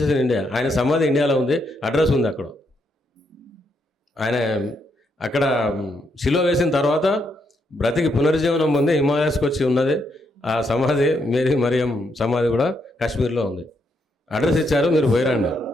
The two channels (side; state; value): both; normal; correlation 0.77